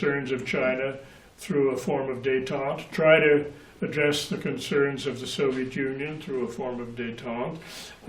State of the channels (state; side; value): identical; both; correlation 1.00